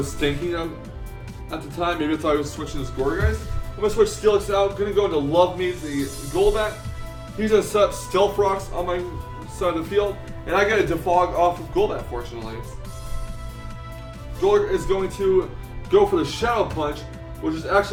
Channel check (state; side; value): identical; both; correlation 1.00